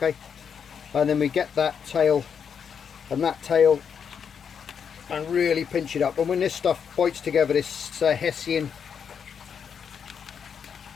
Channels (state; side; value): quieter; right; 7.1 dB